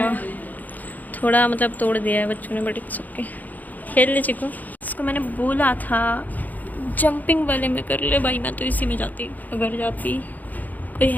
थोड़ा मतलब तोड़ दिया है बच्चों ने, बट इट्स ओके, खेल ले चिको। इसको मैंने बोला था जंपिंग वाले में कर ले भाई, मैं तो इसी में जाती, अगर जाती कोई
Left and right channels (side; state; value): right; late; 0.082 ms